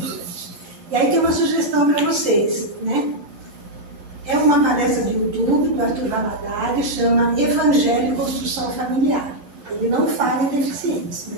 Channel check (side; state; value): left; late; 10 ms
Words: E aí tem uma sugestão para vocês, né? É uma palestra do YouTube, do Arthur Valadares, chama Evangelho e Construção Familiar. Ele não fala em deficientes,